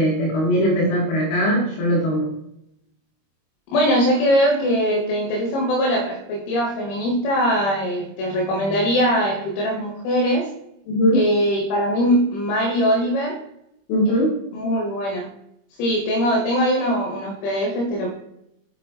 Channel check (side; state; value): right; late; 25 ms